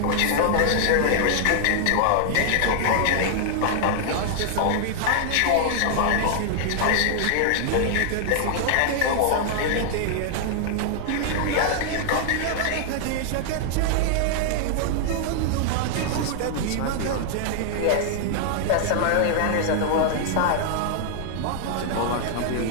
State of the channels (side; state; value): both; different; correlation 0.00